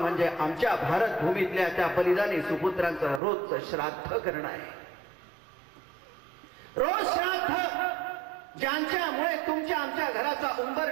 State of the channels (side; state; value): left; drops out; at 3.2 s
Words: आमच्या भारत भूमीतल्या त्या बलिदानी सुपुत्रांचं रोजचं श्राद्ध करणं आहे. रोज श्राद्ध, ज्यांच्यामुळे तुमच्या आमच्या घराचा